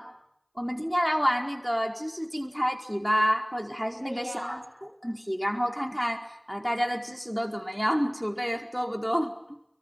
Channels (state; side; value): identical; both; correlation 1.00